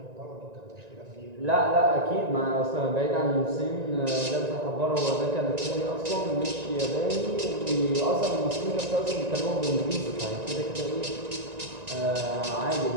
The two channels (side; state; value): left; late; 1.9 ms